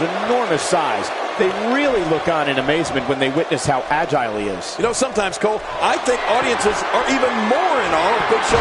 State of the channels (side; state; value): both; identical; correlation 1.00